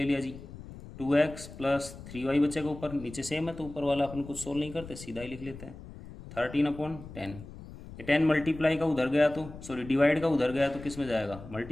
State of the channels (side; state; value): left; noise; rumble, 14 dB below the sound